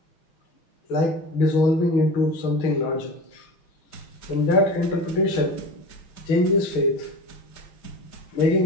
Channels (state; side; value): late; right; 6.3 ms